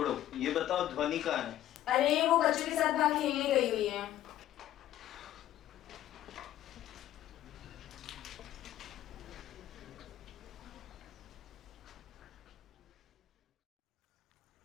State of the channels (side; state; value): right; quieter; 13.0 dB